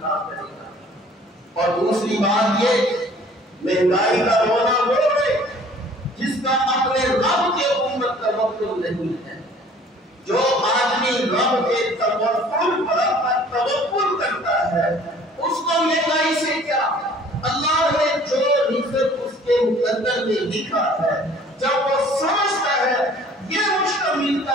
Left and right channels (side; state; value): both; normal; correlation 0.52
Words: کرے گا۔ اور دوسری بات یہ، مہنگائی کا رونا وہ ہے جس کا اپنے رب کے اوپر توکل نہیں ہے۔ جو آدمی رب کے توکل کرتا ہے اس کو مہنگائی سے کیا؟ اللہ نے جو رزق اس کے مقدر میں لکھا ہے، جب وہ سمجھتا ہے یہ مجھ کو ملتا